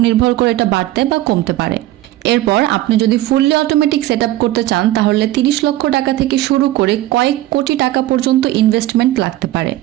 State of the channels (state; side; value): quieter; left; 15.6 dB